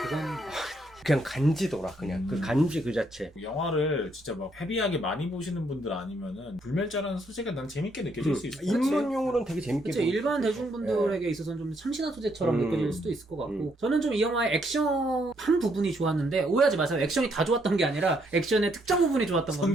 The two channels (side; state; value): both; normal; correlation 0.73